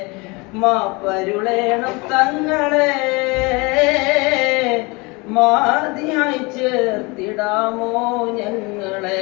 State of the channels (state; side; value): quieter; right; 26.6 dB